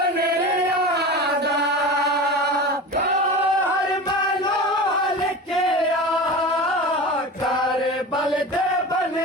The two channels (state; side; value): normal; both; correlation 0.31